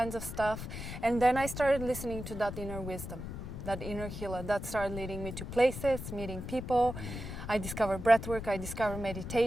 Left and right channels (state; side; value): noise; left; rumble, 8 dB below the sound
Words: of stuff, and then I started listening to that inner wisdom, that inner healer, that started leading me to places, meeting people. I discovered breathwork, I discovered